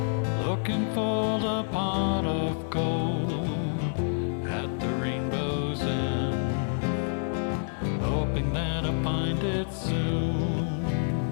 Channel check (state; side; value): silent; right; 59 dB below the other